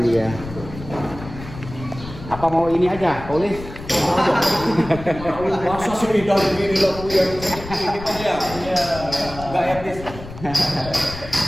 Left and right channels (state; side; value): noise; left; rumble, 13 dB below the sound